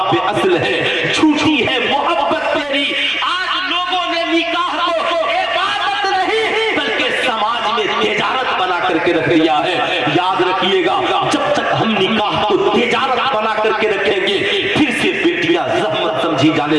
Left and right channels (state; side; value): noise; left; hum, 29 dB below the sound